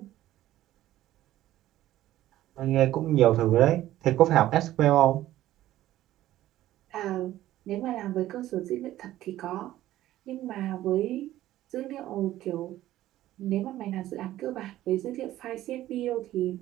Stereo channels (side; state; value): left; quieter; 14.2 dB